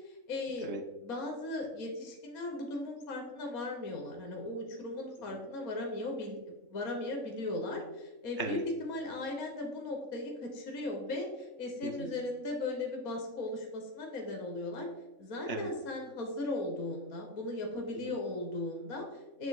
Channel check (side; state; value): right; late; 3.6 ms